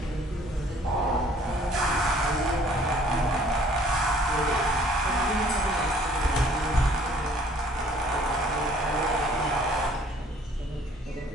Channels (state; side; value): normal; both; correlation 0.57